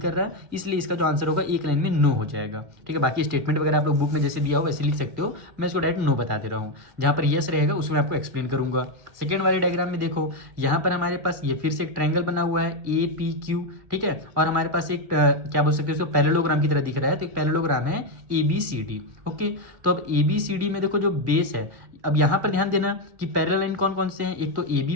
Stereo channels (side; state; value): left; late; 1.9 ms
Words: कर रहा है, इसलिए इसका जो आंसर होगा एक लाइन में नो हो जाएगा। ठीक है, बाकी स्टेटमेंट वगैरह आप लोग बुक में जैसे दिया हो वैसे लिख सकते हो, मैं इसको डायरेक्ट नो बता दे रहा हूँ। जहाँ पर यस रहेगा उसमें आपको एक्सप्लेन करूंगा। सेकेंड वाले डायग्राम में देखो, यहाँ पर हमारे पास ये फिर से एक ट्रायंगल बना हुआ है ए पी क्यू। ठीक है, और हमारे पास एक क्या बोल सकते हो, उसको पैरेललोग्राम की तरह दिख रहा है, तो एक पैरेललोग्राम है A B C D. Okay, तो अब ए बी सी डी में देखो जो बेस है, अब यहाँ पर ध्यान देना कि पैरेलल लाइन कौन कौन से हैं, एक तो ए बी